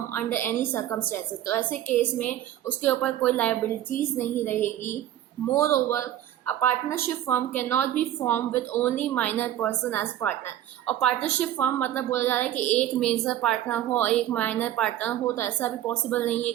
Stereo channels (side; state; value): left; quieter; 12.3 dB